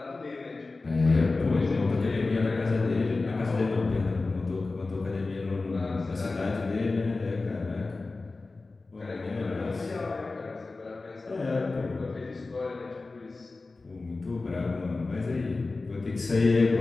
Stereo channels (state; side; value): quieter; right; 3.6 dB